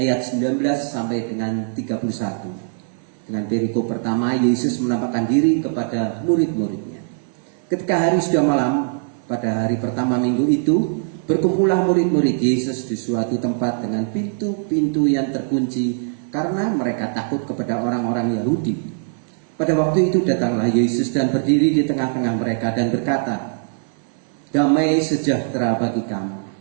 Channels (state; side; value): silent; left; 59 dB below the other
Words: 19 sampai dengan 31. Dengan perikop pertama, Yesus menampakkan diri kepada murid-muridnya. Ketika hari sudah malam, pada hari pertama minggu itu, berkumpullah murid-murid Yesus di suatu tempat dengan pintu-pintu yang terkunci karena mereka takut kepada orang-orang Yahudi. Pada waktu itu datanglah Yesus dan berdiri di tengah-tengah mereka dan berkata, "Damai sejahtera bagi kamu."